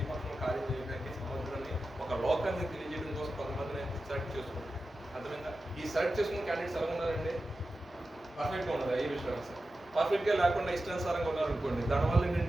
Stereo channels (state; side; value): normal; both; correlation 0.92